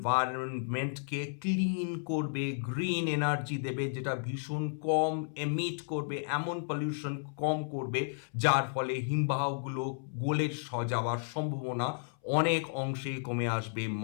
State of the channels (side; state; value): right; silent; 56 dB below the other